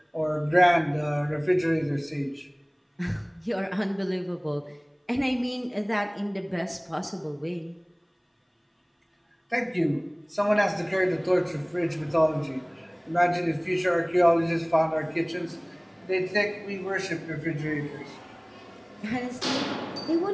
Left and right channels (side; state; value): both; identical; correlation 1.00